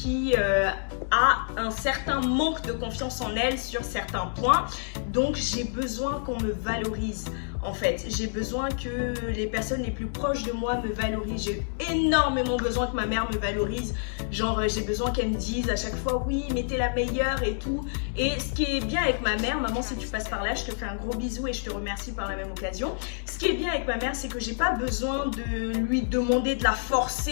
a un certain manque de confiance en elle sur certains points, donc j'ai besoin qu'on me valorise. En fait, j'ai besoin que les personnes les plus proches de moi me valorisent. J'ai énormément besoin que ma mère me valorise. Genre, j'ai besoin qu'elle me dise à chaque fois, oui, mais t'es la meilleure et tout. Et ce qui est bien avec ma mère, maman, si tu passes par là, je te fais un gros bisou et je te remercie par la même occasion. Ce qui est bien avec ma mère, c'est que j'ai pas besoin de lui demander de la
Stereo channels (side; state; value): right; silent; digital silence